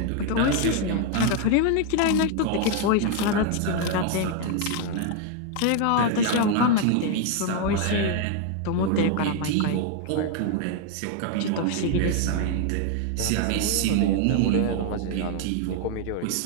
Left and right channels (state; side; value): different; both; correlation 0.01